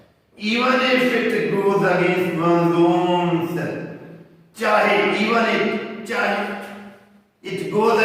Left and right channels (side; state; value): both; identical; correlation 1.00